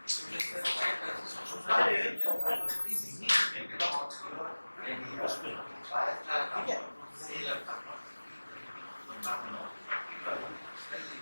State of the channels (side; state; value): both; inverted; correlation -1.00